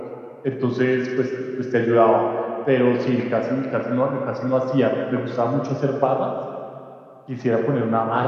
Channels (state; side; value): identical; both; correlation 1.00